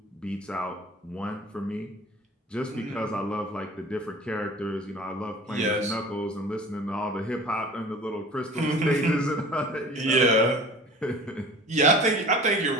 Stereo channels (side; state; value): both; normal; correlation 0.43